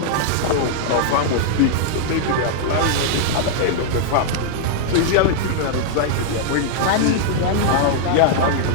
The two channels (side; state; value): both; different; correlation -0.01